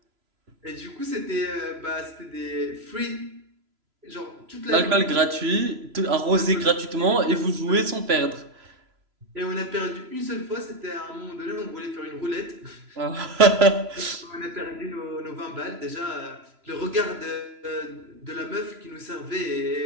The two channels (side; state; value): left; late; 3.0 ms